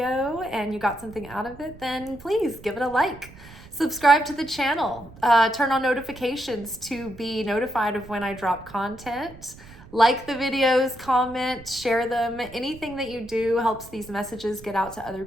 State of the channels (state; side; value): noise; right; rumble, 19 dB below the sound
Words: and you got something out of it, then please give it a like. Subscribe to the channel. Turn on notifications to be notified of when I drop content. Like the videos, comment, share them. Anything that you do helps these messages get out to other